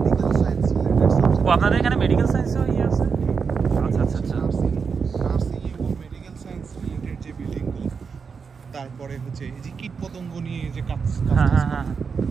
সায়েন্স রিলেটেড সাবজেক্ট। ও আপনাদের এখানে মেডিকেল সায়েন্সও আছে? আচ্ছা আচ্ছা আচ্ছা। নার্সিং এবং মেডিকেল সায়েন্স রিলেটেড যে বিল্ডিংগুলো, তারপরে হচ্ছে এই যে কীট পতঙ্গ নিয়ে যে কাজ। হ্যাঁ,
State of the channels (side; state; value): left; quieter; 5.7 dB